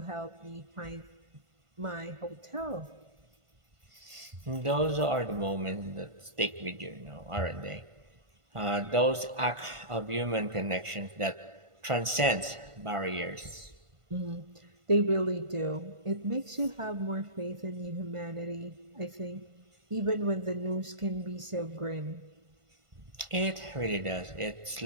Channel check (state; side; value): late; left; 1.5 ms